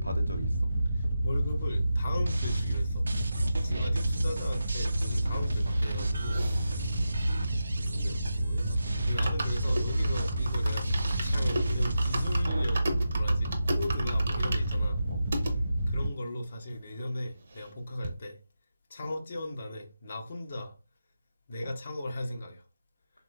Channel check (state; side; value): inverted; both; correlation -0.89